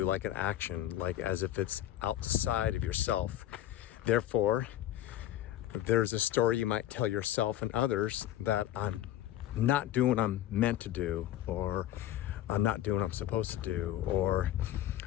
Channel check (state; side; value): quieter; right; 12.8 dB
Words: like an action, like as if it's outside of yourself. Therefore, there's a story you might tell yourself and others that I'm not doing what I'm meant to do, or I'm not doing what I'm supposed to do, or